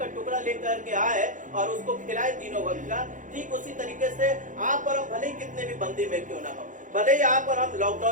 टुकड़ा लेकर के आए और उसको खिलाए तीनों वक्त का, ठीक उसी तरीके से आप और हम भले ही कितने भी बंदी में क्यों ना हो, भले ही आप और हम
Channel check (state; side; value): late; left; 0.37 ms